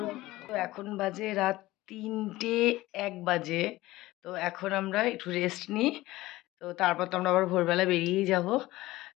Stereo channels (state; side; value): quieter; right; 18.0 dB